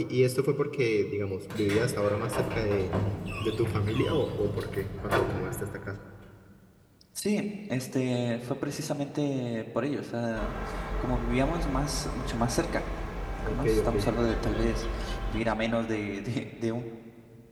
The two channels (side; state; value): both; identical; correlation 1.00